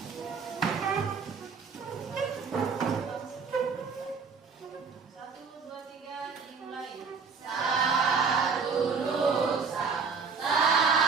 1, 2, 3, dimulai. Satu nusa,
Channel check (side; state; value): left; quieter; 5.3 dB